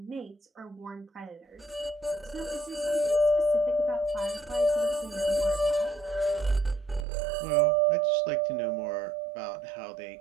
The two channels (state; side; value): drops out; left; at 7.1 s